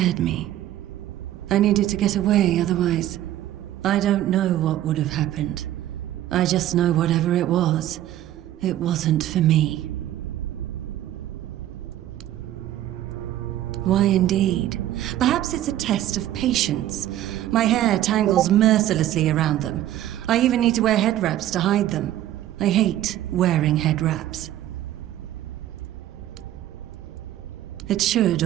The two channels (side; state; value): left; quieter; 13.1 dB